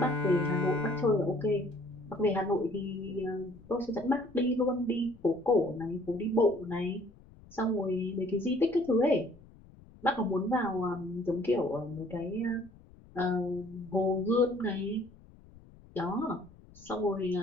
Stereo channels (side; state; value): left; noise; rumble, 23 dB below the sound